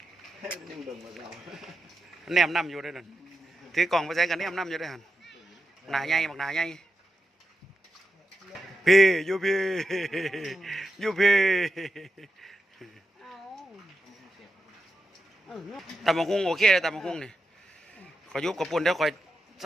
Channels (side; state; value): both; normal; correlation 0.89